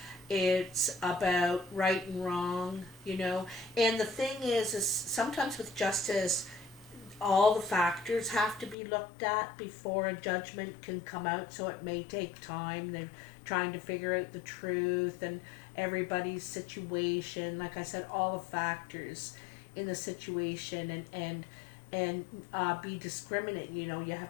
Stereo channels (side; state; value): right; drops out; at 8.8 s